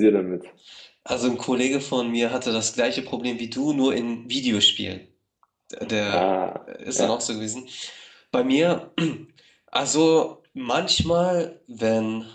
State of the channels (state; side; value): identical; both; correlation 1.00